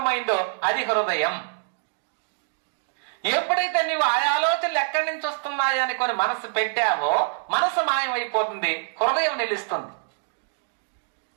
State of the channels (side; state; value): left; silent; digital silence